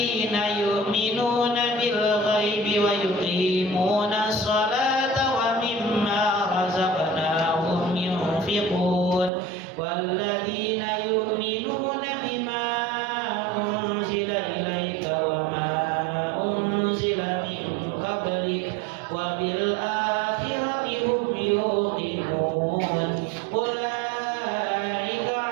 يؤمنون بالغيب ويقيمون الصلاة ومما رزقناهم ينفقون والذين يؤمنون بما أنزل إليك وما أنزل من قبلك وبالآخرة هم يوقنون. أولئك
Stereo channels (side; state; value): left; drops out; at 9.3 s